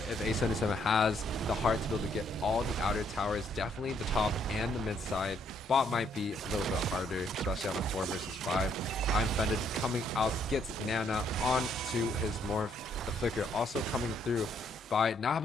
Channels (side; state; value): both; normal; correlation 0.70